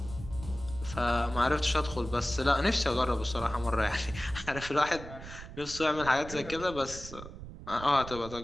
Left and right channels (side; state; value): right; noise; rumble, 12 dB below the sound